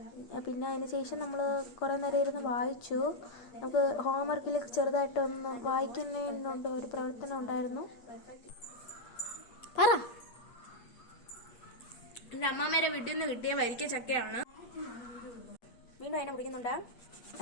പിന്നെ അതിന് ശേഷം നമ്മൾ കുറേ നേരം ഇരുന്ന് വായിച്ചു. നമുക്ക് ഹോംവർക്കിൽ ചെറുതായിട്ടൊന്ന് വായിക്കുന്നതിനുണ്ട് ഒരു പ്രവർത്തനം ഉണ്ടായിരുന്നു. പറ. എൻ്റെ അമ്മാമ്മേരെ വീട്ടിൽ നിന്ന് കിട്ടിയ വരിക്ക ചക്കയാണ്. വീണ്ടും അതിനെ മുടിക്കുന്നുണ്ട്.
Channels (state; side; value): late; right; 8.5 ms